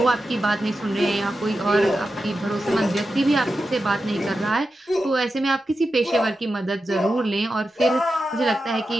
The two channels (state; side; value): normal; both; correlation 0.90